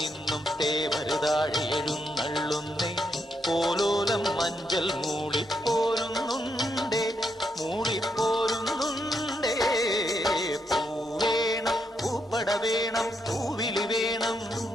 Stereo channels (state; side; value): normal; both; correlation 0.79